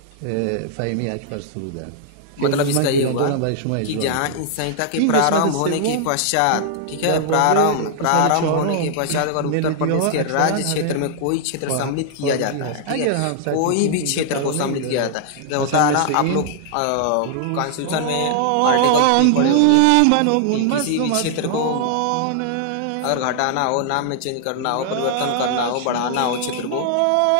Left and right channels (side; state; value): both; different; correlation -0.01